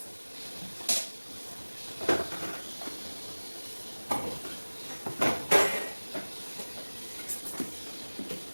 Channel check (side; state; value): both; inverted; correlation -1.00